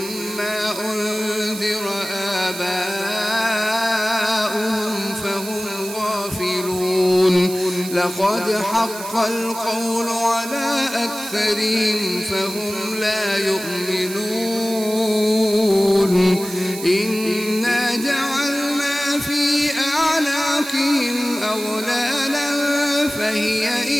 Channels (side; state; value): right; noise; hiss, 11 dB below the sound